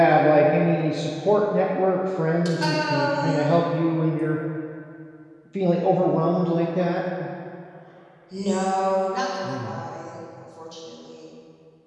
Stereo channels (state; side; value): identical; both; correlation 1.00